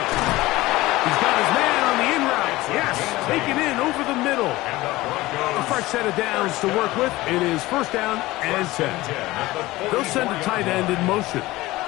got his man on the in route. Yes, taken in over the middle. A fresh set of downs to work with. It is 1st down and 10. They'll send a tight end in motion.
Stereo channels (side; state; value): right; quieter; 18.7 dB